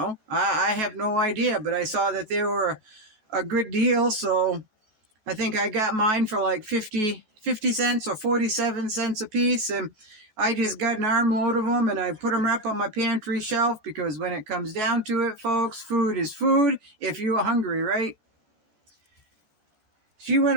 I have no idea, but I saw that they were a good deal, so I think I got mine for like 50 cents or 47 cents a piece, and I just got an armload of them, and I put them up on my pantry shelf, because when it comes down to it, folks, food is food if you're hungry, right? She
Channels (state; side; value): late; left; 14 ms